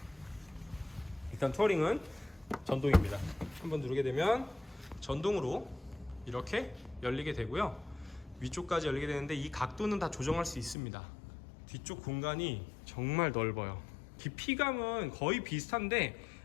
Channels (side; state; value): right; drops out; at 10.8 s